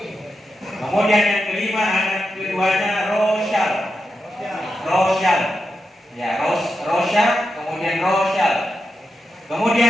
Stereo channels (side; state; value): both; normal; correlation 0.88